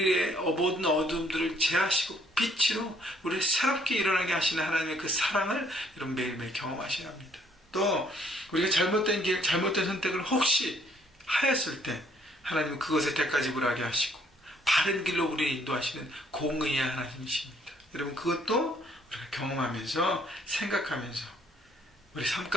모든 어둠들을 제하시고 빛으로 우리를 새롭게 일어나게 하시는 하나님의 그 사랑을 여러분 매일매일 경험하셔야 합니다. 또 우리가 잘못된 길, 잘못된 선택을 혹시 하였을 때 하나님은 그것에 대가지불하게 하시고 바른 길로 우리를 인도하시는 공의의 하나님이십니다. 여러분 그것도 우리가 경험하면서 생각하면서 우리 삶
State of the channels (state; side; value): normal; both; correlation 0.65